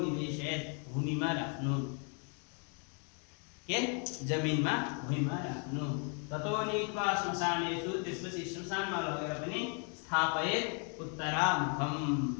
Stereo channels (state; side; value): quieter; right; 39.4 dB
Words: भूमिमा राख्नु, के जमिनमा भूमिमा राख्नु। ततो नीत्वा श्मशानेषु, त्यसपछि श्मशानमा लगेर पनि स्थापयत उत्तरामुखम,